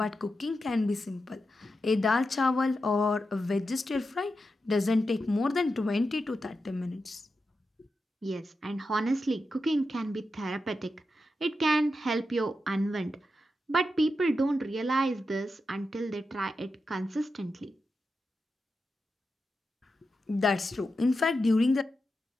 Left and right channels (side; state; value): both; normal; correlation 0.88